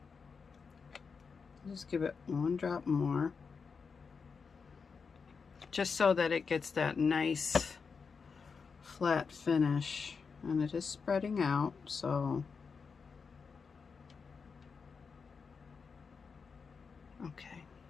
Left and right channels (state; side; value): quieter; right; 5.4 dB